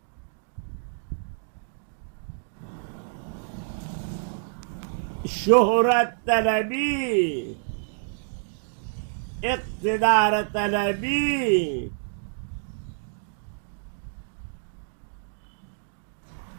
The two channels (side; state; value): left; silent; digital silence